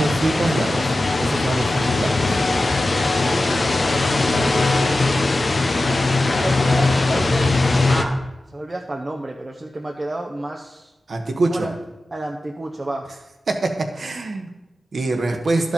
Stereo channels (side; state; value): both; normal; correlation 0.94